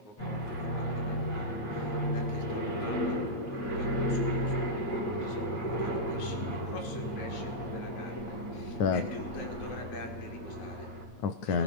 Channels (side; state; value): right; late; 8.9 ms